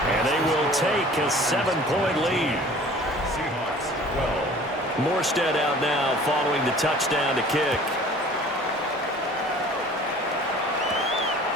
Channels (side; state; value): both; normal; correlation 0.47